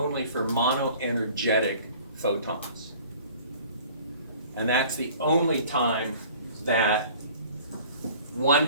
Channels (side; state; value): both; inverted; correlation -0.48